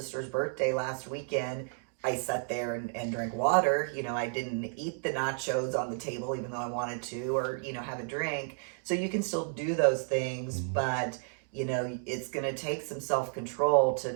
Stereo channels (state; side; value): silent; left; 56 dB below the other